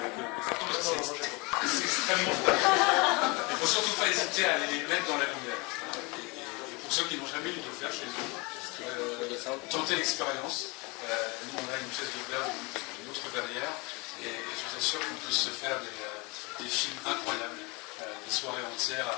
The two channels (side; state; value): right; quieter; 27.5 dB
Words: ça tombe, c'est extrêmement fragile. Il ne faut surtout pas hésiter à aller les mettre dans la lumière. Et pour ceux qui n'ont jamais eu de faire chez eux, tentez l'expérience. Nous on a une pièce de verre d'une autre verrière, et je vous assure qu'on peut se faire des films incroyables, des soirées entières